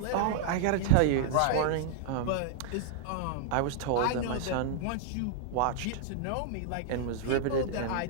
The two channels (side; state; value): both; different; correlation -0.01